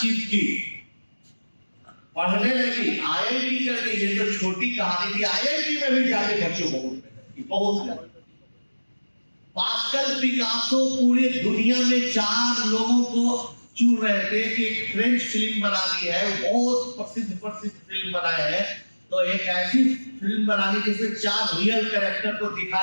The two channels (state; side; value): inverted; both; correlation -1.00